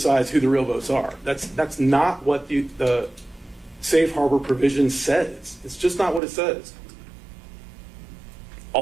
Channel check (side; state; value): left; drops out; at 6.2 s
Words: who the real votes are. That's not what the safe harbor provision says. It's just not what it says.